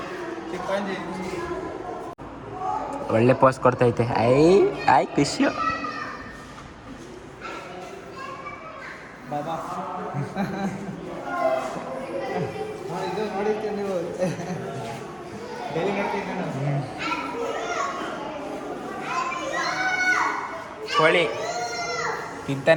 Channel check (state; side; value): identical; both; correlation 1.00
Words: ಒಳ್ಳೆ ಪೋಸ್ಟ್ ಕೊಡ್ತೈತೆ. ಐ ಖುಷಿ. ಬಾಬಾ ಇದು ನೋಡಿರ್ತೀವಿ ನೀವು ಡೈಲಿ ನೋಡ್ತೀವಿ ನಾನು. ಕೋಳಿ